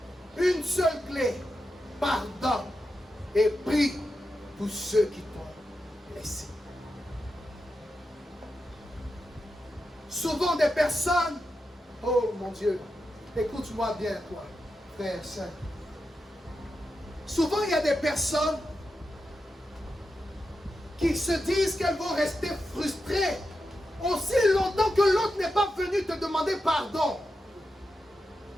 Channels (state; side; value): normal; both; correlation 0.89